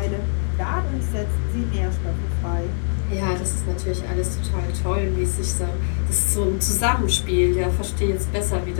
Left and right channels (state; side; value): silent; right; digital silence